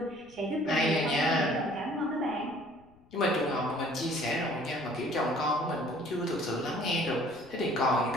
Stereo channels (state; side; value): noise; left; rumble, 28 dB below the sound